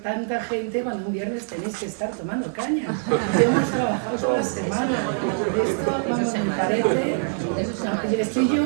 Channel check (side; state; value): left; silent; digital silence